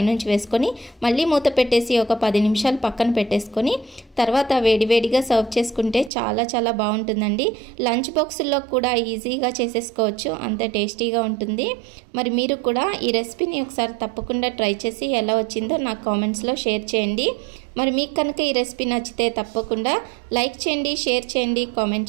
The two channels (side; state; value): left; drops out; at 6.1 s